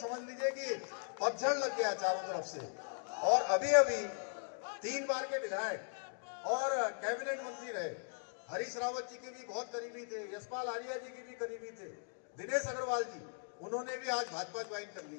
लीजिए कि पतझड़ लग गया चारों तरफ से। और अभी 3 बार के विधायक और कैबिनेट मंत्री रहे, हरीश रावत जी के भी बहुत करीबी थे, यशपाल आर्या जी के भी करीबी थे, दिनेश अग्रवाल जी, उन्होंने भी आज भाजपा ज्वाइन कर ली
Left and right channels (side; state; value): right; silent; digital silence